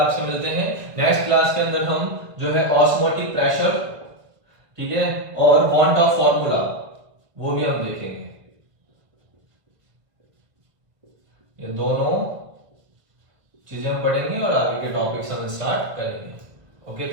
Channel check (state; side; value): late; left; 1.4 ms